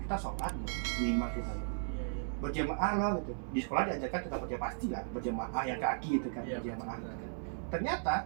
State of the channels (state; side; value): silent; left; digital silence